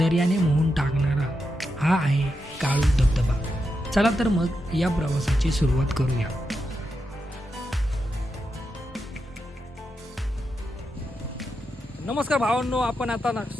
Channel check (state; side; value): normal; both; correlation 0.86